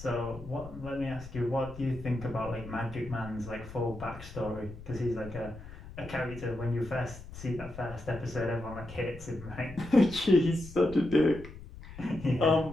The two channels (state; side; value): noise; left; rumble, 14 dB below the sound